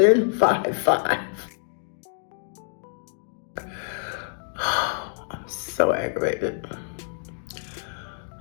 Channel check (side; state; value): right; silent; digital silence